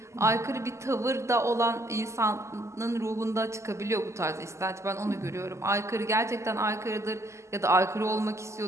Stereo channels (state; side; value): late; left; 0.13 ms